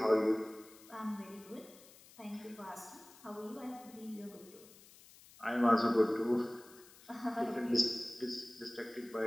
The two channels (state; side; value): noise; left; hiss, 22 dB below the sound